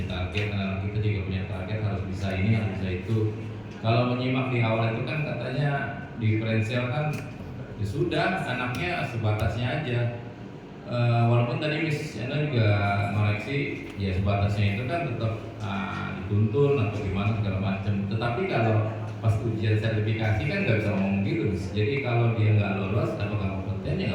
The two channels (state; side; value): identical; both; correlation 1.00